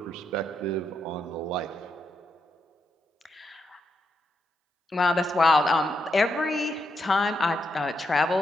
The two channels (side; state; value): both; normal; correlation 0.82